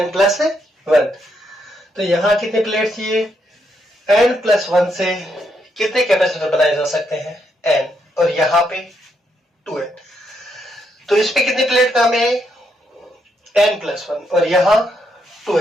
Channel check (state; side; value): normal; both; correlation 0.78